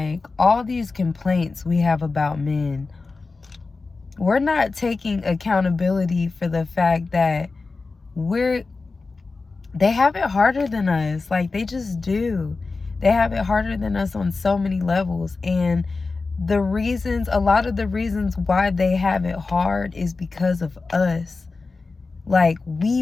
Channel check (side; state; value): right; quieter; 3.9 dB